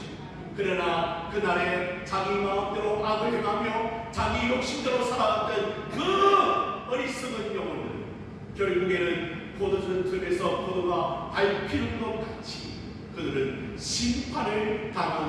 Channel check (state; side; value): identical; both; correlation 1.00